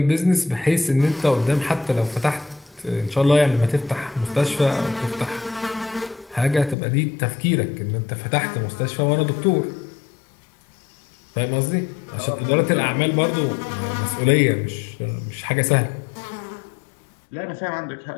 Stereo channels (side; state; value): right; drops out; at 6.8 s